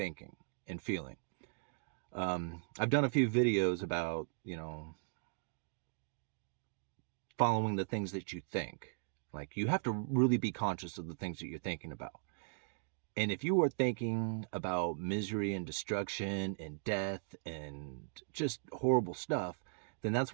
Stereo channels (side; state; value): left; silent; digital silence